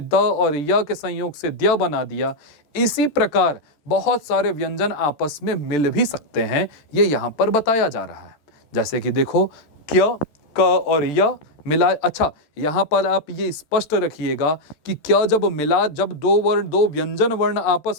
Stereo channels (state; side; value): late; right; 13 ms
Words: और य के संयोग से द्य बना दिया, इसी प्रकार बहुत सारे व्यंजन आपस में मिल भी सकते हैं, ये यहाँ पर बताया जा रहा है। जैसे कि देखो, क्य, क और य मिला। अच्छा, यहाँ पर आप ये स्पष्ट रखिएगा कि क्या जब मिला, जब दो वर्ण, दो व्यंजन वर्ण